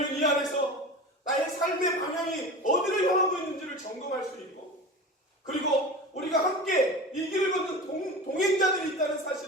이 안에서 나의 삶의 방향이 어디를 향하고 있는지를 점검할 수 있고 그리고 우리가 함께 이 길을 걷는 동행자들이 있다는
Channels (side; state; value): both; normal; correlation 0.31